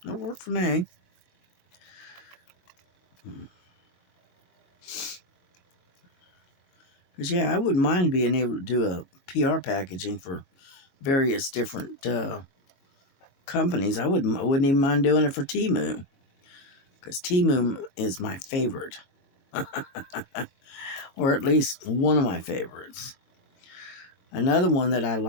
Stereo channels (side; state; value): right; late; 22 ms